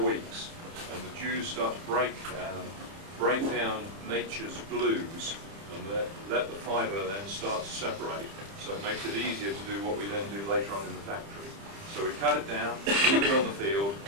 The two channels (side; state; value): left; late; 30 ms